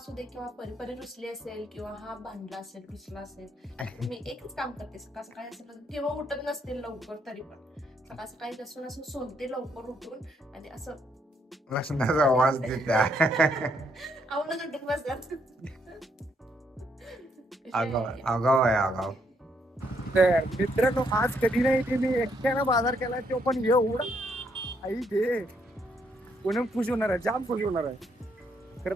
दे किंवा परी रुसली असेल किंवा हा भांडला असेल, रुसला असेल, मी एकच काम करते. सकाळ सकाळी असेल किंवा उठत नसते लवकर तरी पण सकाळ सकाळी लसूण असं सोलते लवकर उठून आणि असं लसणाचा आवाज देत्या. आवडून उठून बसतात. आगाव आहे आगाव. मित्रांनो, आज कधी नाही ते मी एकट्यानं बाजार केला, तो पण एवढा आई घे कोणी खुश होणार आहे, जाम खुश होणार आहे.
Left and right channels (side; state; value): both; normal; correlation 0.73